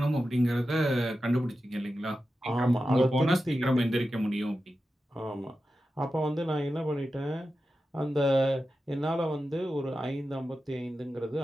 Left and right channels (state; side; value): normal; both; correlation 0.92